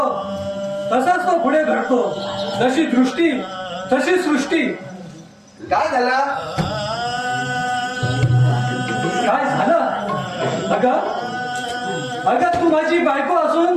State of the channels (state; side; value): identical; both; correlation 1.00